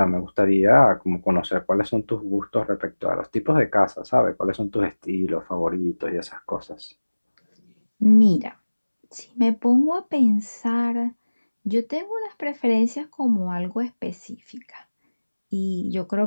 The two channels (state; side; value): inverted; both; correlation -1.00